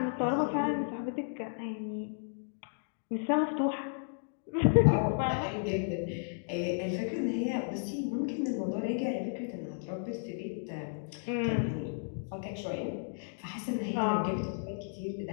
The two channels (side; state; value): right; silent; digital silence